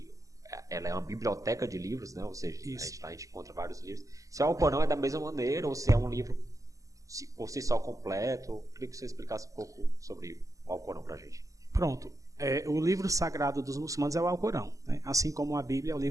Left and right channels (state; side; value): late; left; 0.16 ms